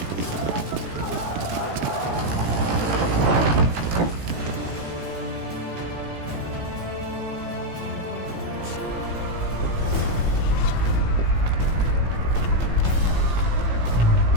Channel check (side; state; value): left; late; 17 ms